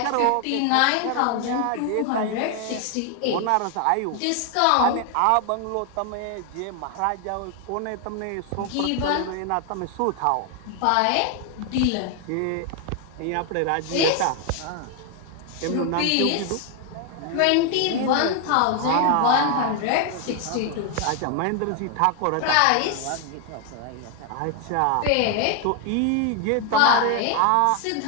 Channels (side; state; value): both; different; correlation 0.01